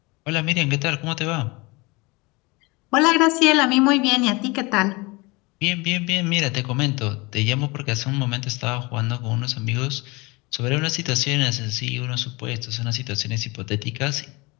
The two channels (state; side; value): quieter; right; 25.2 dB